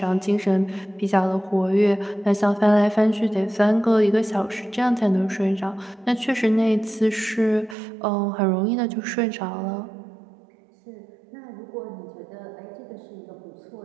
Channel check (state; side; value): drops out; left; at 7.8 s